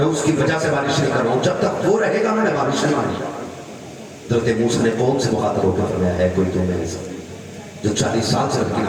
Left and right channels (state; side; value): identical; both; correlation 1.00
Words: उसकी वजह से बारिश नहीं कर रहा हूं, जब तक वो रहेगा मैंने बारिश नहीं मानी। हज़रत मूसा ने कौम से मुखातब होकर फरमाया है कोई तो मेरे साथ जो 40 साल से रब की